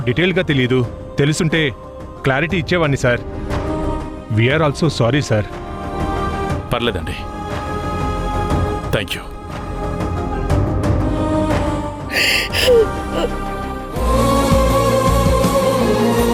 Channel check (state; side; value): identical; both; correlation 1.00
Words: డీటెయిల్గా తెలియదు. తెలుసుంటే క్లారిటీ ఇచ్చేవాడిని sir. We are also sorry sir. పర్లేదండి, థ్యాంక్ యూ.